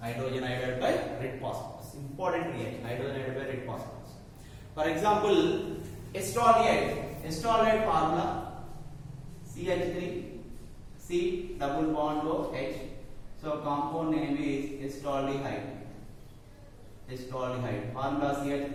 iodide by red phosphorus. Important reaction. Hydrogen iodide by red phosphorus. For example, acetolate formula CH3 C double bond OH. So compound name is acetaldehyde. Formula CH3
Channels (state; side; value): identical; both; correlation 1.00